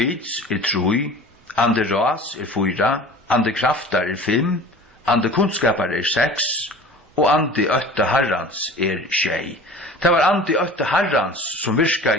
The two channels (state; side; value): normal; both; correlation 0.41